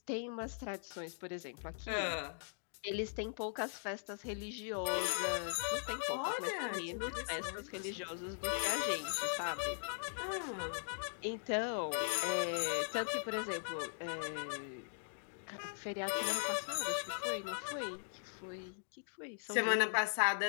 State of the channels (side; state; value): right; silent; digital silence